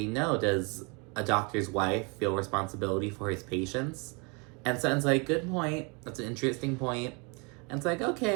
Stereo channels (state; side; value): quieter; left; 31.6 dB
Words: no, does a doctor's wife feel responsibility for his patients? And Sutton's like, good point, that's an interesting point. And it's